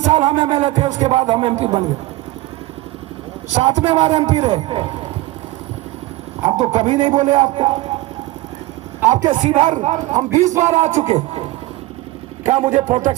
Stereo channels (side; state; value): left; quieter; 18.7 dB